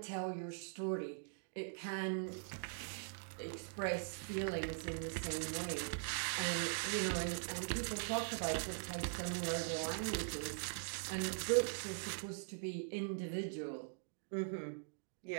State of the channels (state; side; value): silent; left; digital silence